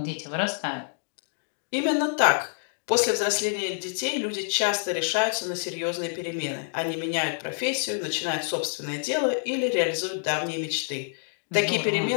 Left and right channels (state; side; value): silent; right; digital silence